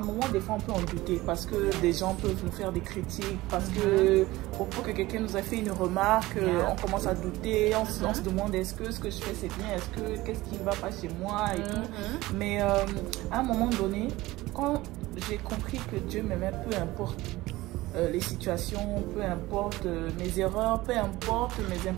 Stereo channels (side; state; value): left; quieter; 18.7 dB